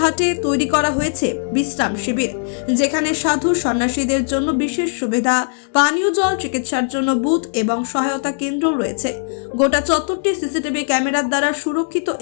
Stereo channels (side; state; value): right; silent; digital silence